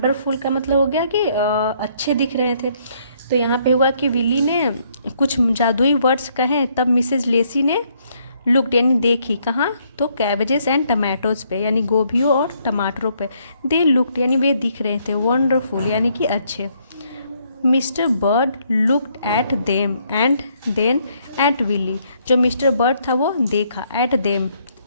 का मतलब हो गया कि अच्छे दिख रहे थे। तो यहाँ पे हुआ कि विली ने कुछ जादुई वर्ड्स कहे, तब मिसेज लेसी ने लुक्ड यानी देखी, कहाँ, तो कैबेजेस एंड टमाटोज पे यानी गोभियों और टमाटरों पे, दे लुक्ड यानी वे दिख रहे थे, वंडरफुल यानी कि अच्छे। Mister Bird looked at them and then at Willy, जो मिस्टर बर्ड था वो देखा, एट देम,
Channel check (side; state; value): both; inverted; correlation -0.70